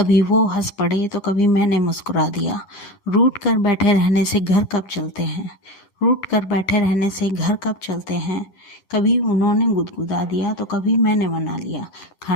वो हंस पड़े तो कभी मैंने मुस्कुरा दिया। रूठ कर बैठे रहने से घर कब चलते हैं, रूठ कर बैठे रहने से घर कब चलते हैं। कभी उन्होंने गुदगुदा दिया तो कभी मैंने मना लिया।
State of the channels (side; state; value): right; late; 11 ms